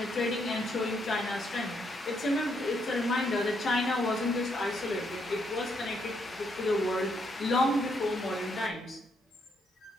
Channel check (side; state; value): both; normal; correlation 0.75